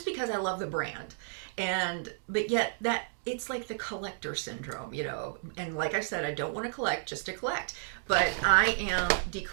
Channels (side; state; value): left; silent; digital silence